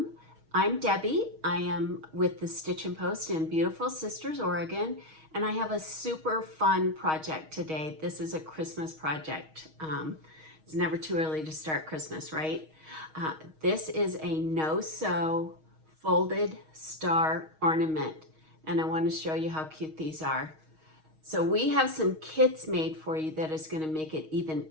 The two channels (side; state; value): left; late; 6.4 ms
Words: I'm Debbie. I am with the Stitchin Post in beautiful Sisters, Oregon, and I have a super fun project today. This is a Christmas project. It's never too early to start Christmas, right? This is a no-sew folded star ornament, and I want to show you how cute these are. So we have some kits made for you that is going to make it even